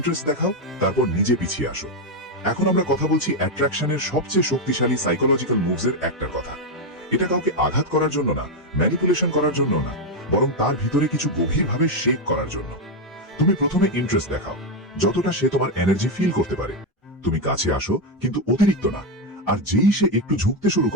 দেখাও, তারপর নিজে পিছিয়ে আসো। এখন আমরা কথা বলছি অ্যাট্রাকশনের সবচেয়ে শক্তিশালী সাইকোলজিক্যাল মুভসের একটার কথা। এটা কাউকে আঘাত করার জন্য না, ম্যানিপুলেশন করার জন্য না, বরং তার ভিতরে কিছু গভীরভাবে শেক করার জন্য। তুমি প্রথমে ইন্টারেস্ট দেখাও, যতটা সে তোমার এনার্জি ফিল করতে পারে। তুমি কাছে আসো, কিন্তু অতিরিক্ত না। আর যেই সে একটু ঝুঁকতে শুরু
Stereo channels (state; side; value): normal; both; correlation 0.05